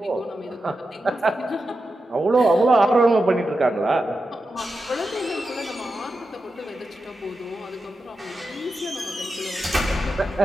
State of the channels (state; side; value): normal; both; correlation 0.90